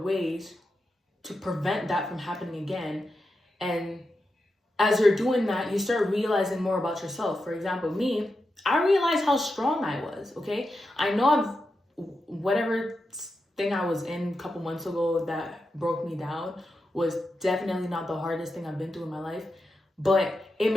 ways to prevent that from happening again. And as you're doing that, you start realizing more about yourself. For example, me, I realized how strong I was. Okay? I know whatever thing I was in a couple months ago that broke me down was definitely not the hardest thing I've been through in my life, but it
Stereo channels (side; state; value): both; normal; correlation 0.88